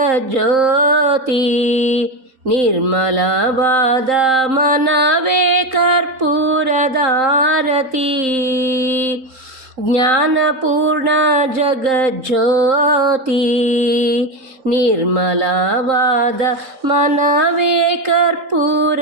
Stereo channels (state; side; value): late; left; 3.8 ms